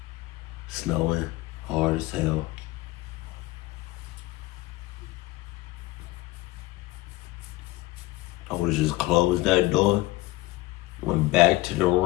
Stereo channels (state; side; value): quieter; right; 19.1 dB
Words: Snowing hard as hell. I would have just closed that door, went back to the